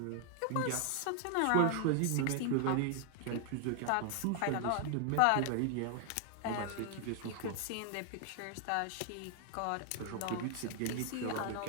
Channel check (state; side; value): different; both; correlation 0.00